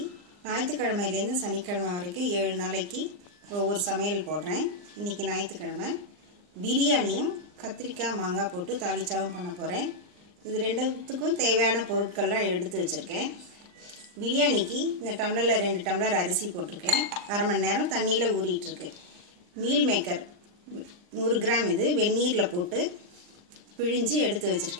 ஞாயிற்றுக்கிழமையிலேருந்து சனிக்கிழமை வரைக்கும் 7 நாளைக்கு ஒவ்வொரு சமையல் போடுறேன். இன்றைக்கி ஞாயிற்றுக்கிழமை பிரியாணியும் கத்திரிக்காய் மாங்காய் போட்டு தாளிச்சாவும் பண்ண போகிறேன். இது ரெண்டுத்துக்கும் தேவையான பொருட்கள்லாம் எடுத்து வச்சுருக்கேன். பிரியாணிக்கு இந்த டம்ளரில் 2 டம்ளர் அரிசி போட்டிருக்கேன். அரை மணி நேரம் தண்ணியில் ஊறிட்டுருக்கு. மீல் மேக்கர் 100 கிராம் இது வெந்நீரில் போட்டு பிழிஞ்சு எடுத்து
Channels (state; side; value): late; left; 39 ms